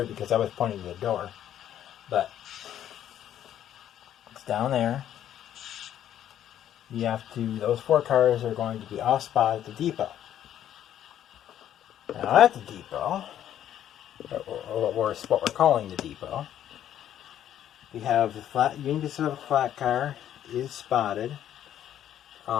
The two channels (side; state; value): right; quieter; 10.9 dB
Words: because I was pointing to the door, but it's down there. You have to, those 4 cars are going to be off spot at the depot. Now at the depot, or what we're calling the depot, we have the Union Pacific flat car is spotted.